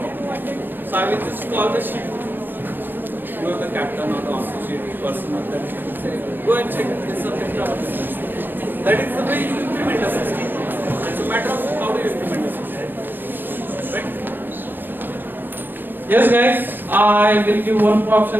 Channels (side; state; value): left; late; 0.094 ms